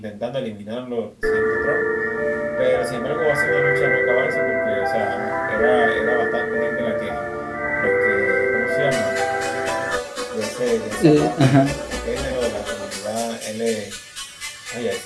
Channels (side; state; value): both; identical; correlation 1.00